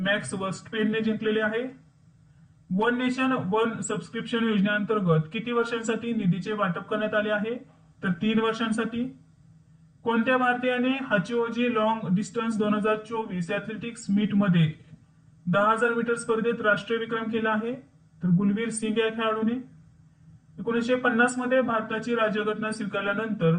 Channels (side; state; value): both; identical; correlation 1.00